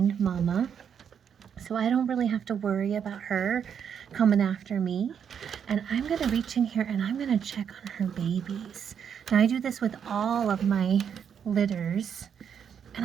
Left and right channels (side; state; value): left; quieter; 7.8 dB